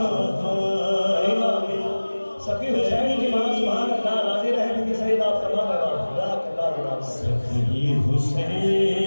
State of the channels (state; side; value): inverted; both; correlation -1.00